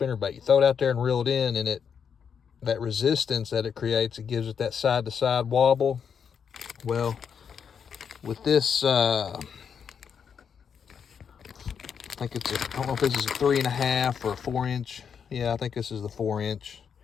You throw it out there and reel it in, and that resistance that it creates, it gives it that side-to-side wobble. Well, with this, I think I don't know if this is a 3.5 or a 4-inch. Yeah, I think this is the 4-inch.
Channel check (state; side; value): quieter; right; 7.1 dB